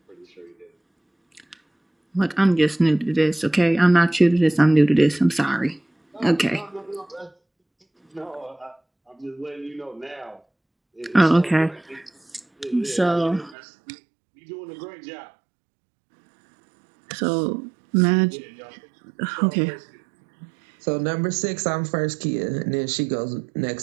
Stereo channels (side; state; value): left; drops out; at 13.6 s